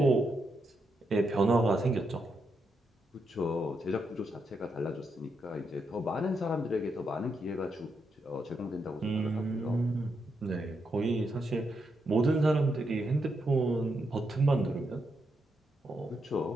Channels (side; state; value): both; normal; correlation 0.82